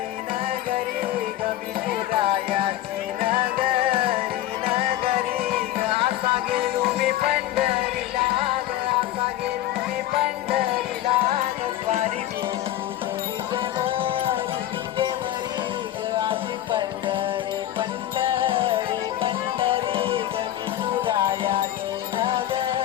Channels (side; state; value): right; quieter; 13.4 dB